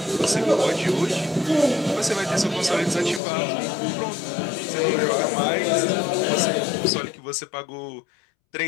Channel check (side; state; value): right; drops out; at 3.2 s